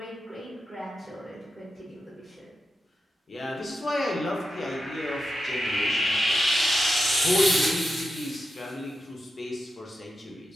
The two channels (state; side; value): normal; both; correlation 0.88